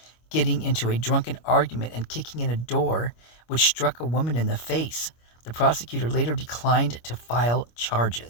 getting into a drunken argument and kicking in a door, which struck a woman in the face. The prosecutor later declined to file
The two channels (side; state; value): right; late; 25 ms